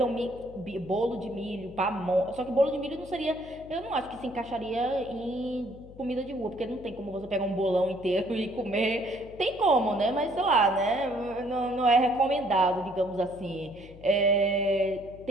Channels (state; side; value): noise; left; hum, 19 dB below the sound